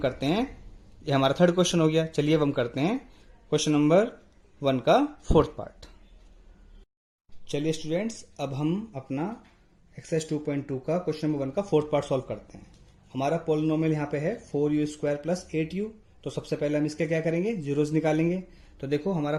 हैं, ये हमारा थर्ड क्वेश्चन हो गया। चलिए अब हम करते हैं क्वेश्चन नंबर 1 का फोर्थ पार्ट। चलिए स्टूडेंट्स, अब हम अपना एक्सरसाइज 2.2 का क्वेश्चन नंबर 1 का फोर्थ पार्ट सॉल्व करते हैं। हमारा पोलिनोमियल यहाँ पे है 4u² प्लस 8u। तो सबसे पहले हम इसके क्या करेंगे, जीरोस निकालेंगे। तो देखो हमारा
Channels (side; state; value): both; identical; correlation 1.00